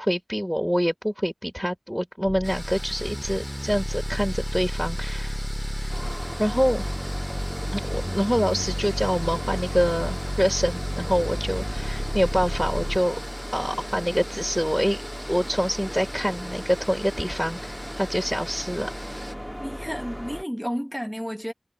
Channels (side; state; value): both; identical; correlation 1.00